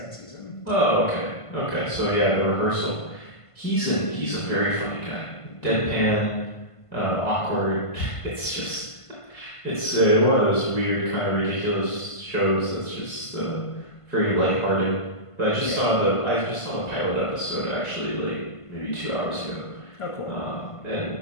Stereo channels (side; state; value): right; late; 1.5 ms